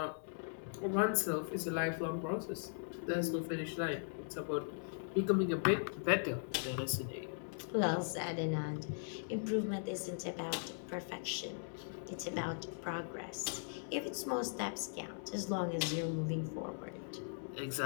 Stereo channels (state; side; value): silent; right; digital silence